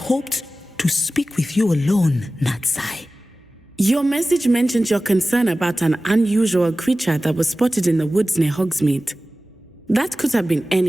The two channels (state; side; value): normal; both; correlation 0.96